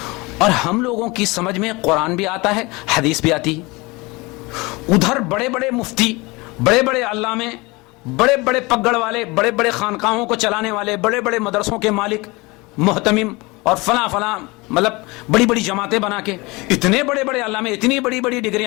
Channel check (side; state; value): right; quieter; 24.4 dB